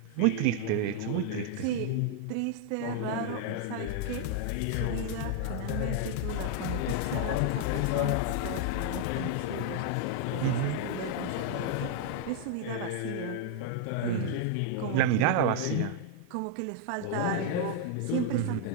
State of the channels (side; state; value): both; different; correlation 0.00